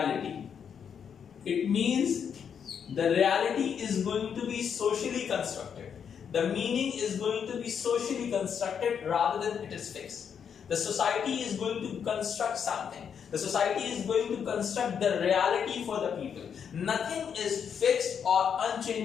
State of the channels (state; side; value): quieter; right; 7.5 dB